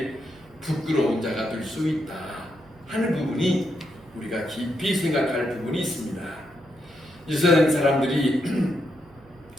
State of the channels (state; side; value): noise; right; hum, 26 dB below the sound